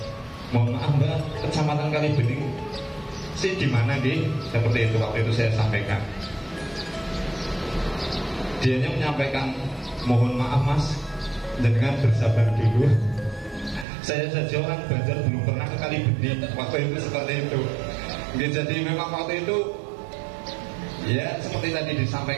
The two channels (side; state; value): left; drops out; at 13.9 s